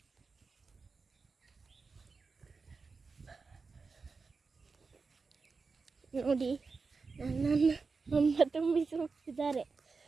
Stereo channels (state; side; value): quieter; left; 4.5 dB